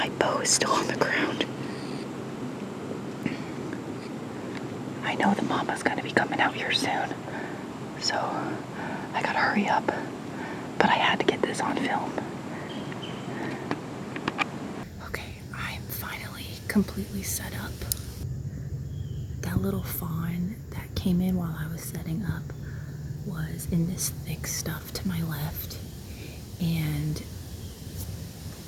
bow is still on the ground. I know the Mama's gonna be coming out here soon, so I gotta hurry up. But I had to get this on film. Okay, I'm finally completely set up. That little fawn that came in while I was setting up was in this thick stuff to my left, and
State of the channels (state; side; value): identical; both; correlation 1.00